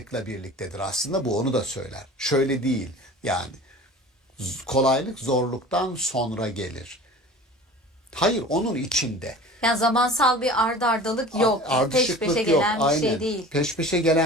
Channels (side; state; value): both; normal; correlation 0.40